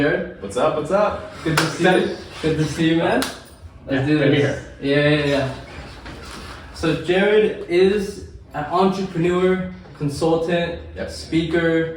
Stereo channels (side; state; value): both; identical; correlation 1.00